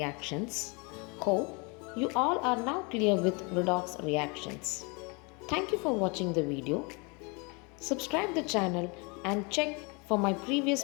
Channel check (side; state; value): right; quieter; 30.6 dB